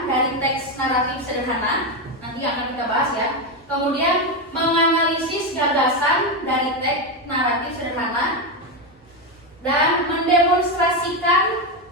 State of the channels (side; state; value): both; normal; correlation 0.10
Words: dari teks naratif sederhana. Nanti akan kita bahas ya. Kemudian menganalisis gagasan dari teks naratif sederhana dan mendemonstrasikan